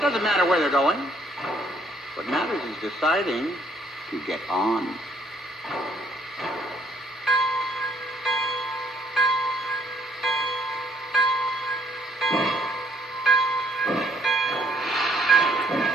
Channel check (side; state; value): both; normal; correlation 0.66